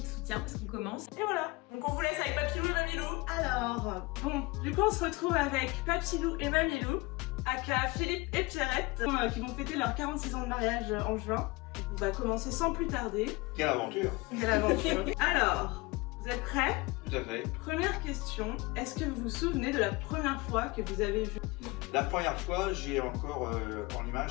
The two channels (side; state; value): right; quieter; 23.5 dB